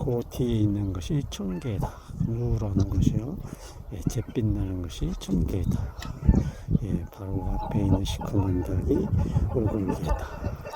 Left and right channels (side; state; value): both; identical; correlation 1.00